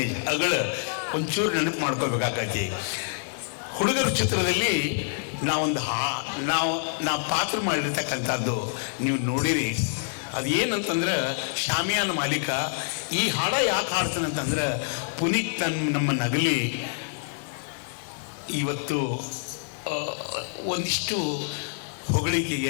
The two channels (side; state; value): right; silent; digital silence